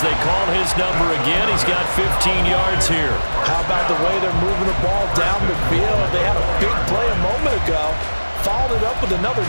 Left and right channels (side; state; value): both; inverted; correlation -1.00